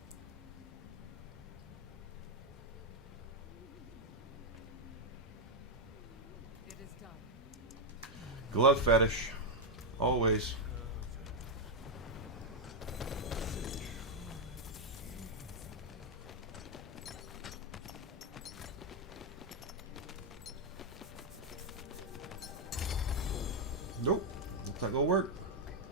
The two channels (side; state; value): both; normal; correlation 0.00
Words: It is done. Glove fetish. Always. It's not gonna work.